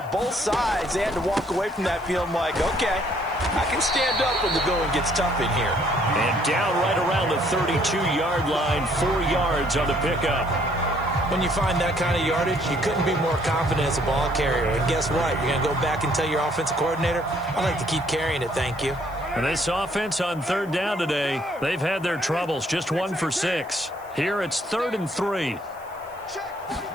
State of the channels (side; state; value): right; noise; hiss, 27 dB below the sound